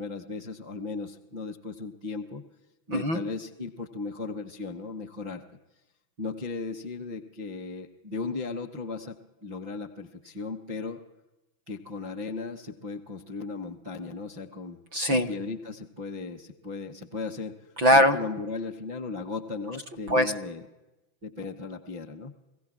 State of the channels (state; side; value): late; left; 6.0 ms